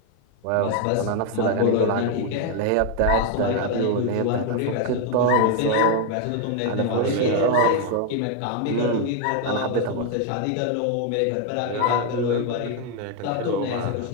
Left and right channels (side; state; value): both; different; correlation 0.00